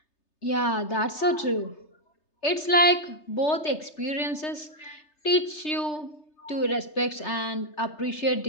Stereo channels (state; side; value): late; right; 3.3 ms